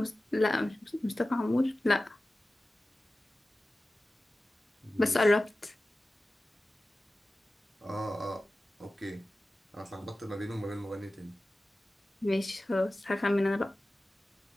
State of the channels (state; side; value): normal; both; correlation 0.96